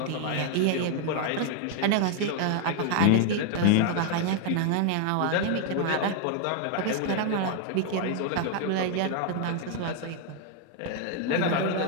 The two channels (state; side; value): different; both; correlation 0.00